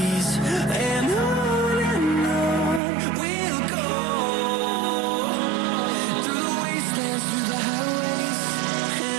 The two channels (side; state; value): left; drops out; at 2.8 s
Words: And on we'll go, through the wastelands, through the highways.